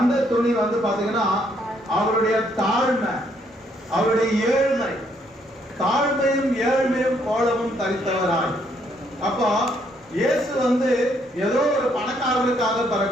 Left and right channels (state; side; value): normal; both; correlation 0.70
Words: துணி பாத்தீங்கன்னா அவருடைய தாழ்மை, அவருடைய ஏழ்மை, தாழ்மையும் ஏழ்மையும் கோலமும் தரித்தவராய். அப்போ இயேசு ஏதோ ஒரு பணக்காரருக்காக